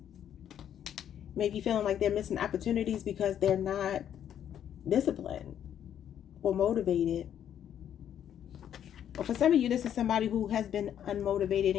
Maybe feeling like they're missing opportunities because they're not disciplined or motivated. Or for some of you, this is somebody who has been unmotivated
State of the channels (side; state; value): right; quieter; 9.8 dB